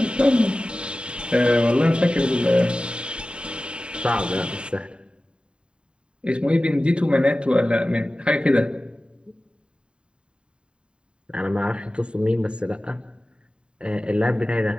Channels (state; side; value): late; left; 0.052 ms